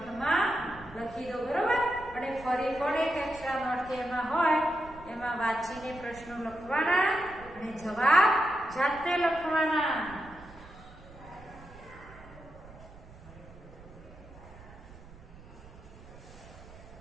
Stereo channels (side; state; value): right; noise; rumble, 19 dB below the sound